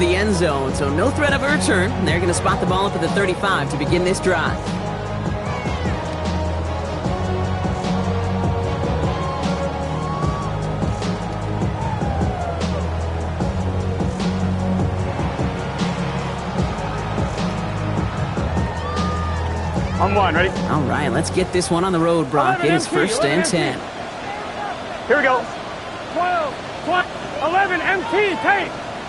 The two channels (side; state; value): both; identical; correlation 1.00